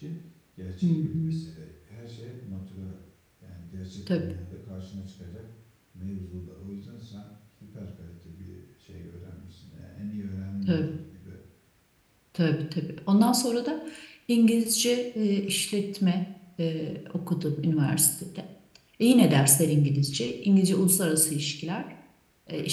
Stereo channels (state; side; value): identical; both; correlation 1.00